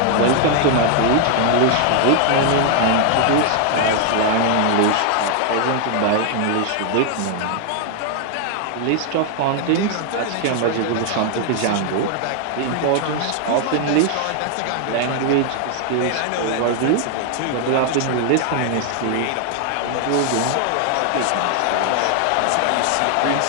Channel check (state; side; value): different; both; correlation 0.00